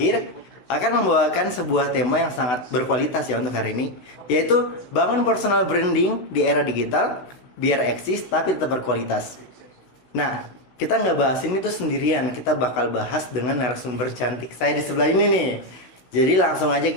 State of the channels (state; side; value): late; right; 16 ms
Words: akan membawakan sebuah tema yang sangat berkualitas ya untuk hari ini, yaitu bangun personal branding di era digital biar eksis tapi tetap berkualitas. Nah, kita nggak bahas ini tuh sendirian, kita bakal bahas dengan narasumber cantik saya di sebelah ini nih. Jadi langsung aja